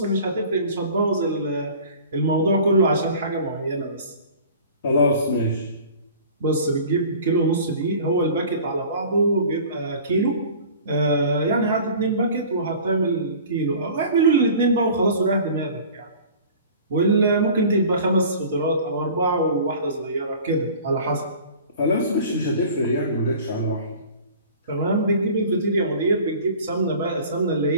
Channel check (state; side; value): inverted; both; correlation -0.44